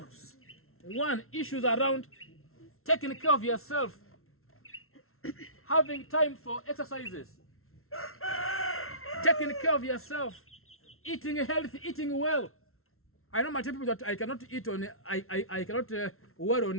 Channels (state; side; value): late; right; 0.62 ms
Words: one, issues around taking care of yourself, having time for exercises, taking care of yourself, eating healthy, eating well. I know my people that I cannot eat on, I cannot wear